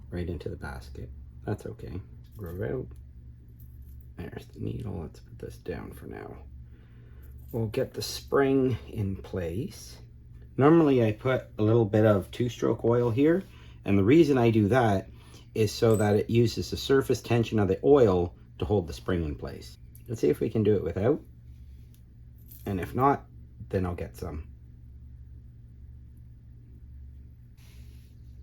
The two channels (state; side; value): identical; both; correlation 1.00